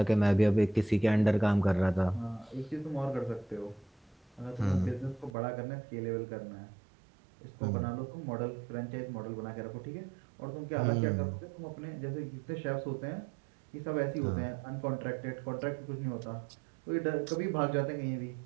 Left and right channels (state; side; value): drops out; left; at 5.3 s